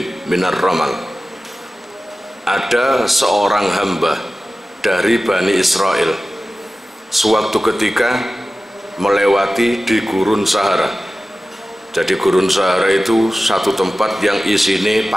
minar ramal. Ada seorang hamba dari Bani Israel sewaktu ketika melewati di gurun Sahara. Jadi gurun Sahara itu satu tempat yang isine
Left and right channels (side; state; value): both; normal; correlation 0.95